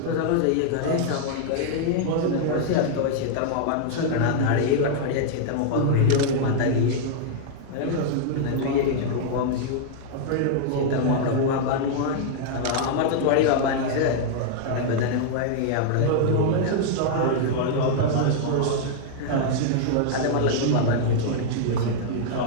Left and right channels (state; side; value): different; both; correlation -0.01